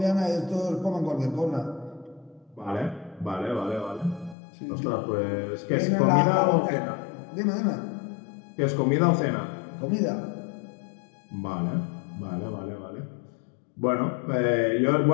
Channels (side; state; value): right; drops out; at 4.4 s